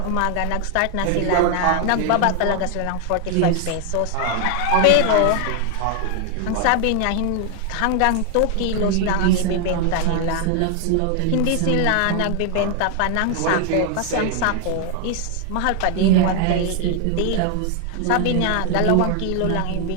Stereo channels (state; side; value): different; both; correlation 0.00